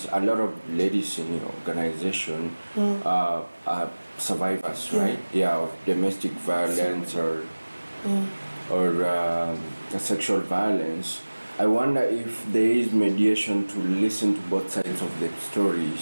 a lot of ladies in your organization are survivors, right? Yeah, of domestic violence or sexual violence. I wonder if there is mediation to listen to both sides of the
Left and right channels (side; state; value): both; inverted; correlation -1.00